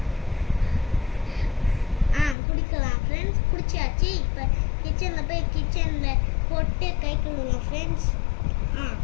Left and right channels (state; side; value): drops out; right; at 2.4 s